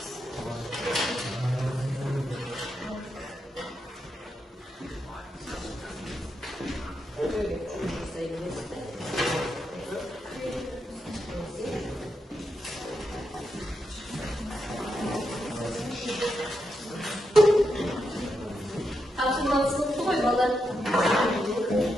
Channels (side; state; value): both; normal; correlation 0.84